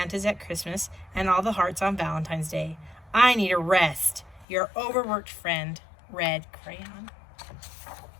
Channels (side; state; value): right; drops out; at 4.5 s